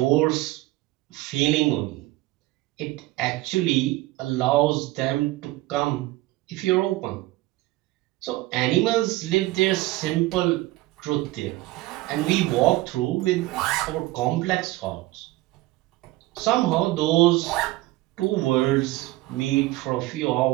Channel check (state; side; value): quieter; left; 18.8 dB